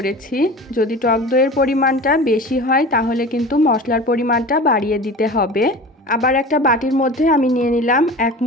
যদি টক দইয়ের পরিমাণটা বেশি হয় তাহলে কিন্তু মশলার পরিমাণটা বাড়িয়ে দিতে হবে। আবার একটা বাটির মধ্যে আমি নিয়ে নিলাম 1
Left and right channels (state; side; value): normal; both; correlation 0.36